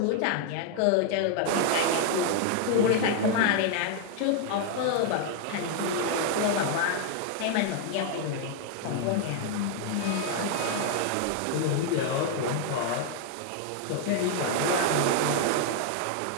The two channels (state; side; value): different; both; correlation 0.00